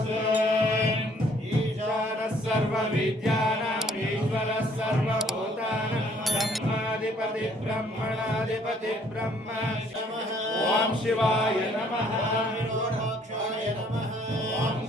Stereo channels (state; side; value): normal; both; correlation 0.62